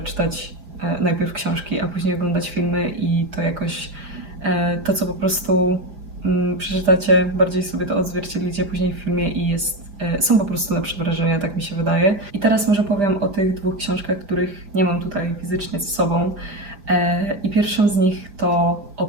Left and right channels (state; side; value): late; left; 5.0 ms